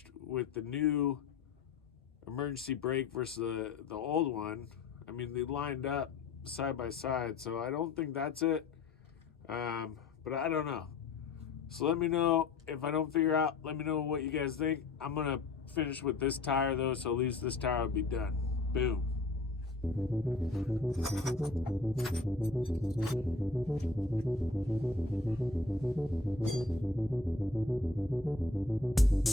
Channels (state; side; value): quieter; right; 3.8 dB